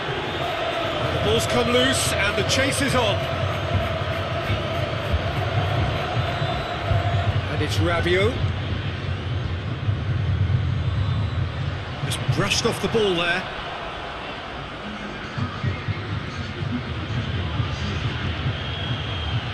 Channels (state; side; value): identical; both; correlation 1.00